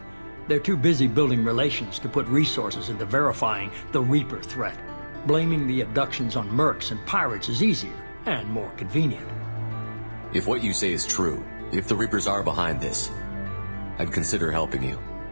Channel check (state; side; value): inverted; both; correlation -1.00